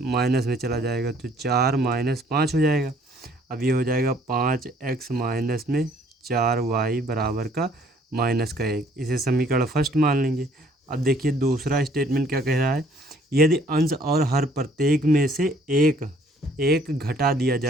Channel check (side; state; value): both; normal; correlation 0.60